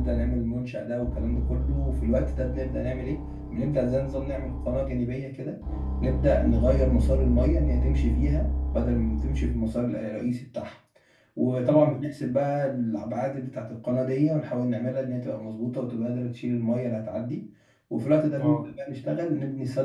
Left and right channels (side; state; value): both; identical; correlation 1.00